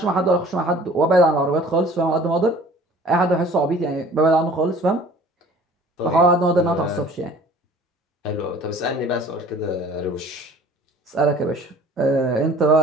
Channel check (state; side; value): normal; both; correlation 0.48